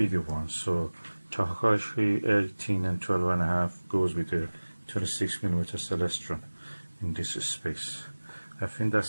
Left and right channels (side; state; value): both; inverted; correlation -1.00